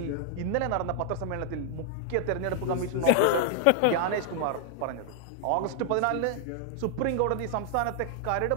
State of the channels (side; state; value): both; different; correlation 0.00